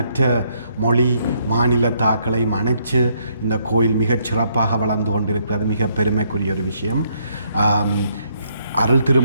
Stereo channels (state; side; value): inverted; both; correlation -0.72